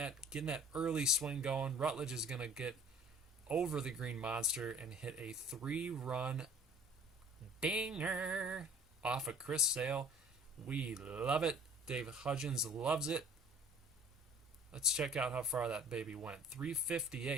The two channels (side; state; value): both; normal; correlation 0.49